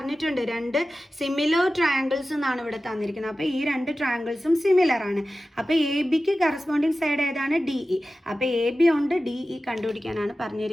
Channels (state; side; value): normal; both; correlation 0.95